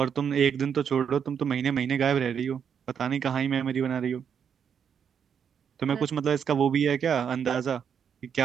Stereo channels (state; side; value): quieter; left; 7.6 dB